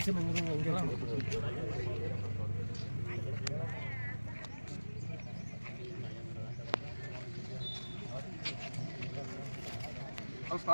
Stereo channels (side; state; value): both; inverted; correlation -1.00